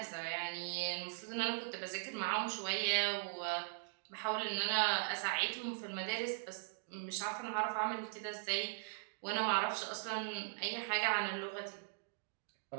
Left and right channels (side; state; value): left; silent; digital silence